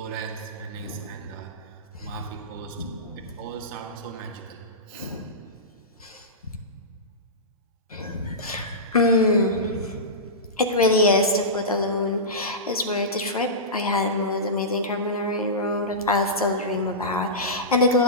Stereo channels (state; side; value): normal; both; correlation -0.17